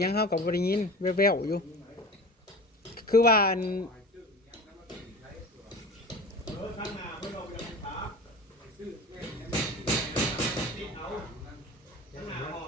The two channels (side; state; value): both; normal; correlation 0.36